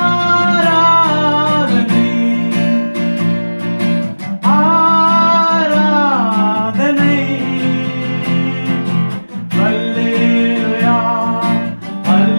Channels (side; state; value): both; inverted; correlation -1.00